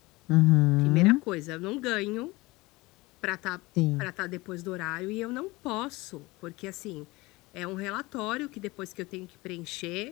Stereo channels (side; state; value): right; quieter; 21.9 dB